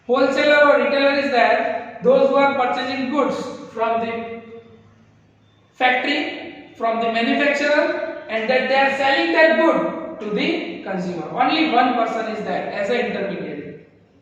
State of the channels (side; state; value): both; identical; correlation 1.00